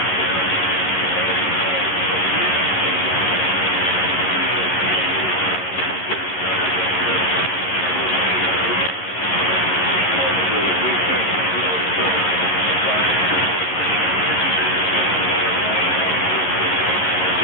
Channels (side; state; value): right; late; 11 ms